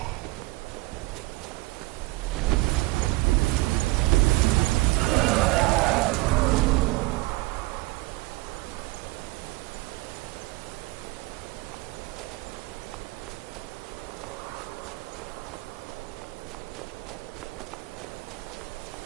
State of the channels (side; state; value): left; quieter; 21.4 dB